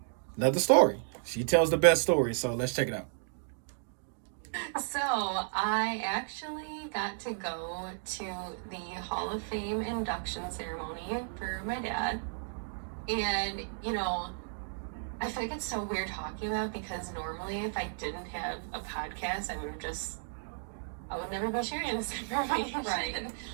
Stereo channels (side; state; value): left; silent; digital silence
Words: story. She tells the best story, so let's check it out. So, I actually got to go to the Hall of Fame induction ceremony for my dad. And, I feel like it's so weird talking about because normally if I didn't have a podcast, I would never be sharing this information. Right.